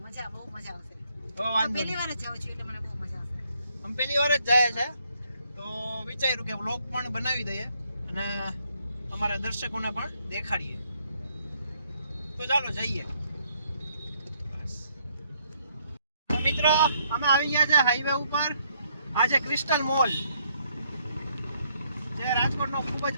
મજા બહુ મજા આવશે. તો વાંધો પહેલી વાર જ જાઉં છું એટલે મને બહુ મજા આવશે. અમે પહેલી વાર જ જાય છે, તો વિચાર્યું કે વ્લોગ પણ બનાવી દઈએ અને અમારા દર્શકોને પણ દેખાડીએ. તો ચાલો જઈએ. બસ તો મિત્રો, અમે આવી ગયા છે હાઈવે ઉપર. આ છે ક્રિસ્ટલ મોલ, જે રાજકોટનો ખૂબ જ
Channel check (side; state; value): both; inverted; correlation -0.70